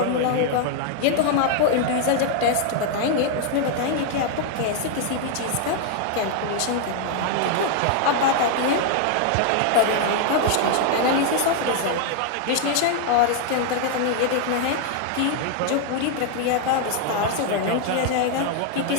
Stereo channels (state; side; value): different; both; correlation 0.00